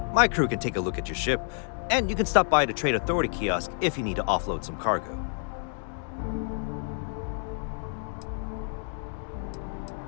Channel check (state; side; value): silent; right; 59 dB below the other